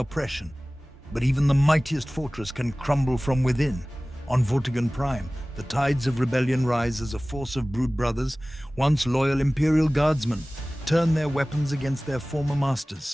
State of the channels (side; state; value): both; normal; correlation 0.98